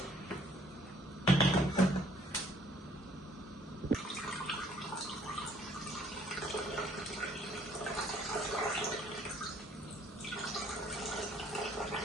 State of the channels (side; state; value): both; normal; correlation 0.61